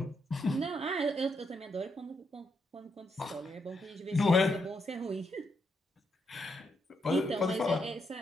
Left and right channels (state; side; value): normal; both; correlation 0.79